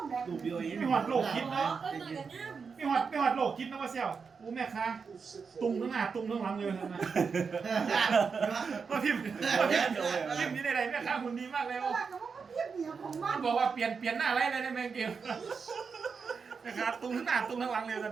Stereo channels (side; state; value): left; quieter; 5.5 dB